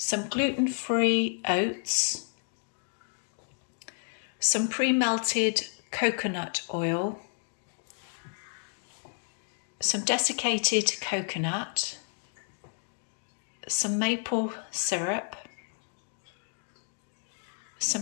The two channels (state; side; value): silent; right; 56 dB below the other